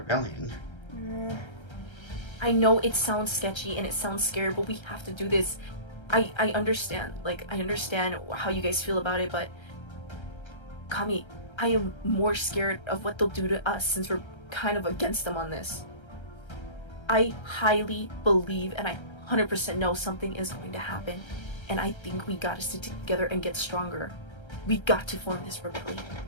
I know it sounds sketchy and it sounds scary, but we have to do this. I understand. Like, I understand how you guys feel about it, but Kami, I am more scared of what they'll do to us since we're kind of against them on this. I highly believe and I 100% know something is going to happen. And I think we gotta stick together and get stronger. We got to form this rebellion.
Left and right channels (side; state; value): right; late; 1.3 ms